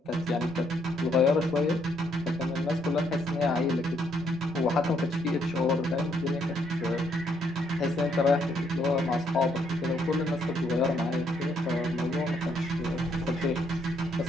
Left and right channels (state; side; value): normal; both; correlation 0.72